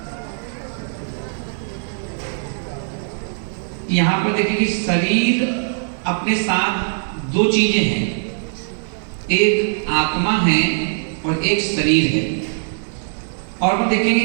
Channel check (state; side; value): silent; left; 65 dB below the other